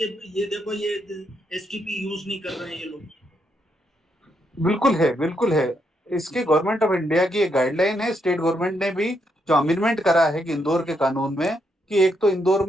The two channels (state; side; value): normal; both; correlation 0.78